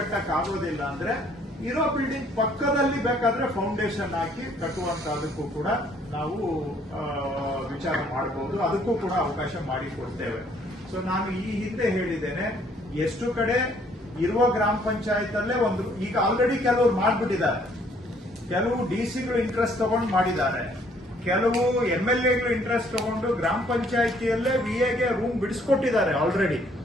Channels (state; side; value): normal; both; correlation 0.63